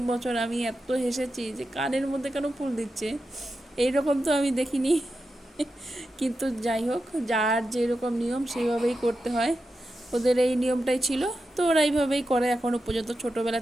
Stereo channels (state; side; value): normal; both; correlation 0.90